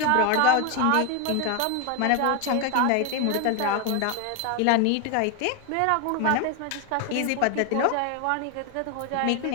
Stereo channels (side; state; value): both; different; correlation 0.01